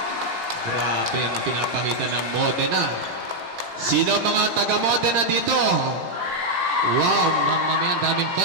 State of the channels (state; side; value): late; left; 17 ms